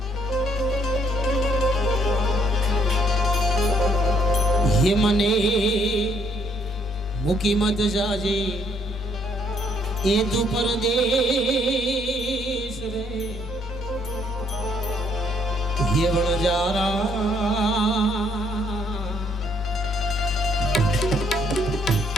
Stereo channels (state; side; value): noise; left; hum, 24 dB below the sound